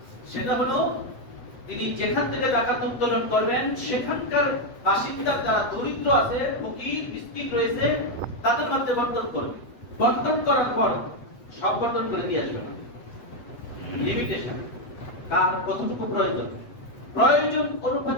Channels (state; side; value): late; right; 8.0 ms